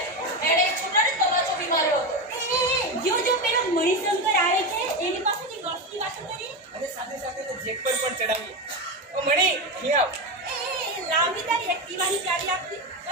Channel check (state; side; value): normal; both; correlation 0.16